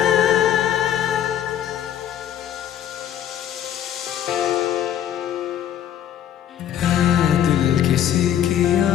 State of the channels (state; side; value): quieter; right; 10.5 dB